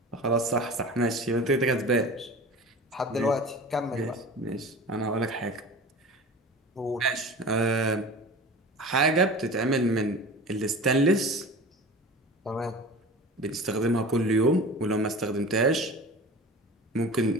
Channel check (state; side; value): normal; both; correlation 0.36